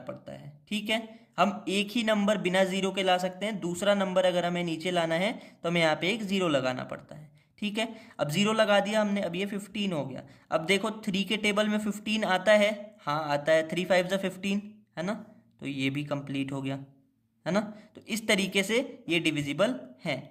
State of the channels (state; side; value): identical; both; correlation 1.00